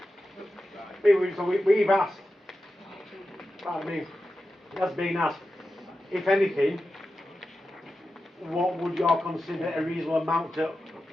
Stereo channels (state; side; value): normal; both; correlation 0.91